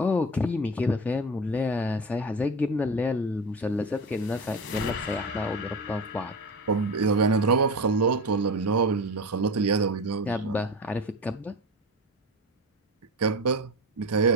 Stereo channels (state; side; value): normal; both; correlation 0.26